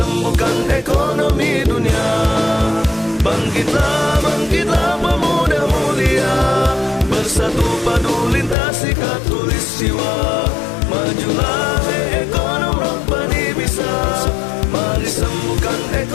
ekonomi dunia. Bangkitlah, bangkitlah pemuda mulia, bersatu padu lintasi khatulistiwa. Majulah hei ekonom Rabbani bisa, mari sembuhkan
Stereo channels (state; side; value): drops out; right; at 8.6 s